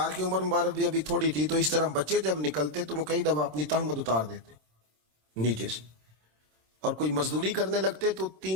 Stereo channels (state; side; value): late; left; 26 ms